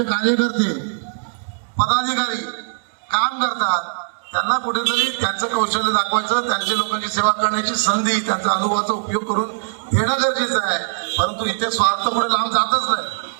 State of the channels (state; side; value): silent; left; 65 dB below the other